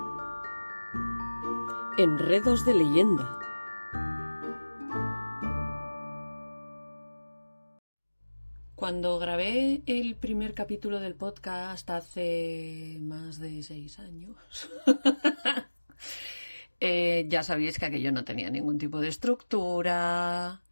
Enredos de leyenda. Cuando grabé el primer capítulo del podcast hace más de 6 años, ya sabéis que aquello no tenía ningún tipo de estructura,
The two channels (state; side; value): inverted; both; correlation -1.00